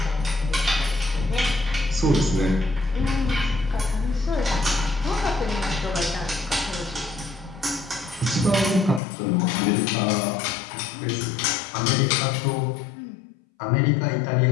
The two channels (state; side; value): drops out; right; at 9.0 s